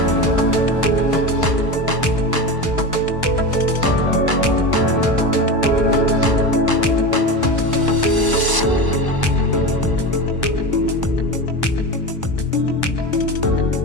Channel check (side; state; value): left; late; 1.0 ms